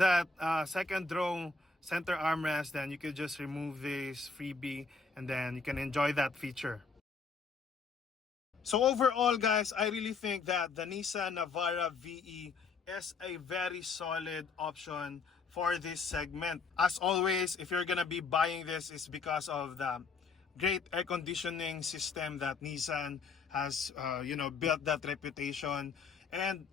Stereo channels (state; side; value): quieter; right; 4.6 dB